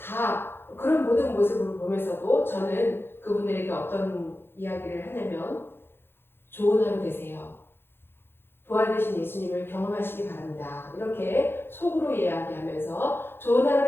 그런 모든 모습을 보면서도 저는 그분들에게 어떤 이야기를 하냐면 좋은 하루 되세요. 부활되신 예수님을 경험하시기 바랍니다. 이렇게 속으로 이야기하면서 좋은 하루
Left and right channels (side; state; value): right; late; 0.11 ms